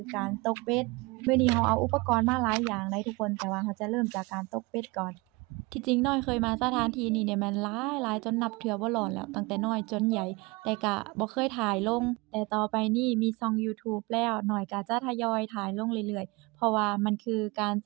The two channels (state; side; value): quieter; left; 25.2 dB